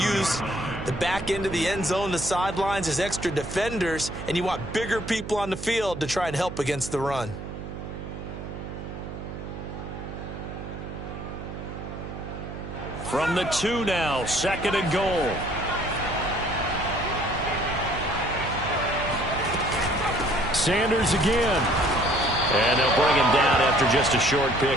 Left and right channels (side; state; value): right; noise; hum, 9 dB below the sound